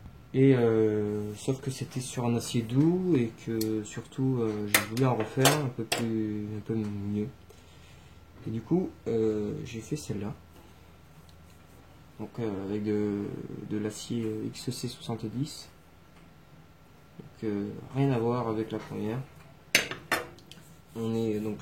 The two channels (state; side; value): identical; both; correlation 1.00